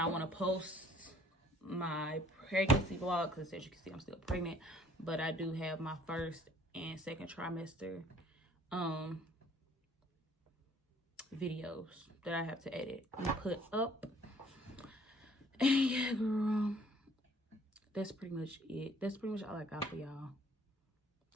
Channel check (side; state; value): both; normal; correlation 0.57